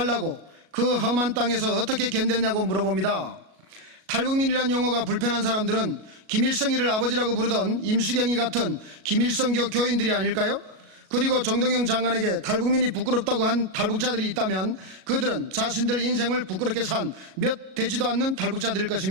그 험한 땅에서 어떻게 견뎠냐고 물어봅니다. 탈북민이란 용어가 불편한 사람들은 김일성이를 아버지라고 부르던 임수경이 같은 김일성교 교인들이 아닐까요? 그리고 정동영 장관에게 탈북민이 부끄럽다고 한 탈북자들이 있다면 그들은 자신들 인생을 부끄럽게 산 몇 되지도 않는 탈북자들일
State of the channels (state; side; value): late; left; 37 ms